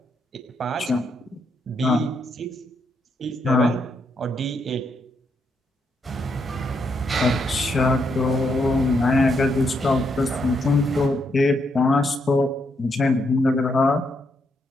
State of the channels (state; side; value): normal; both; correlation 0.78